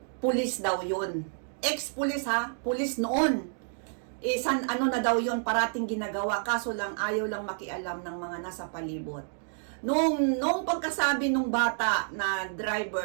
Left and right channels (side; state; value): left; silent; digital silence